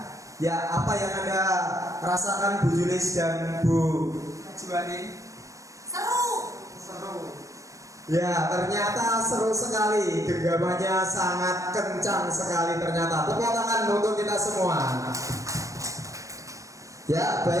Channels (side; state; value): left; late; 0.16 ms